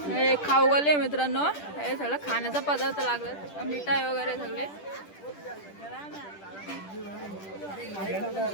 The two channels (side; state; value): right; late; 10 ms